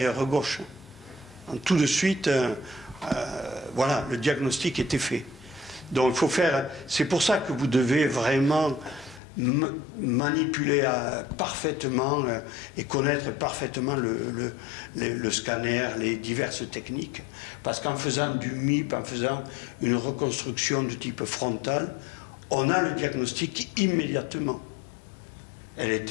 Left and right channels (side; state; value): right; drops out; at 9.2 s